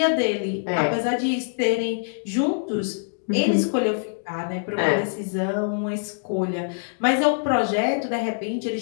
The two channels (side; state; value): right; silent; digital silence